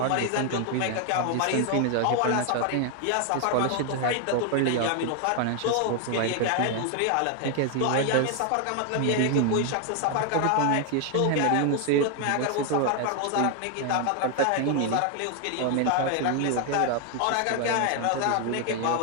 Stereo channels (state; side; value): different; both; correlation 0.00